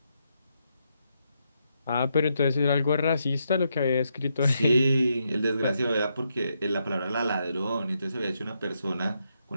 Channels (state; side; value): inverted; both; correlation -0.80